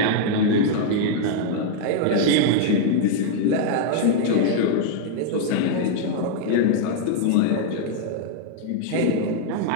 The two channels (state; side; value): different; both; correlation -0.01